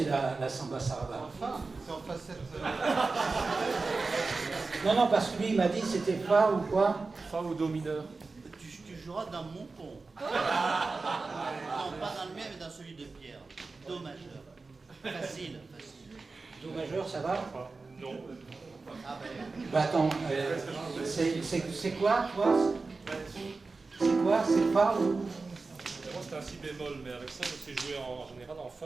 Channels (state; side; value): quieter; left; 3.9 dB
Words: la samba sarava? C'est en facette. Non, parce que lui il m'a dit c'était fa ou quoi? Fa ou do mineur. Tu joueras dans mon ton. Non, pas dans le mien, mais dans celui de Pierre. Do majeur. Facile. Do majeur, ça va? Non. Bah attends, c'est quoi toi? C'est quoi? C'est fa ou? Moi c'est un si bémol, mais avec ça je sais jouer en général en